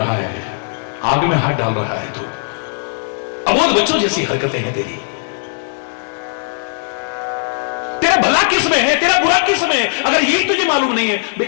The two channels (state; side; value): silent; right; digital silence